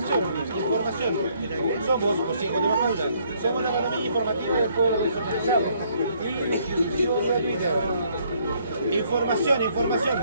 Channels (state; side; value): inverted; both; correlation -0.67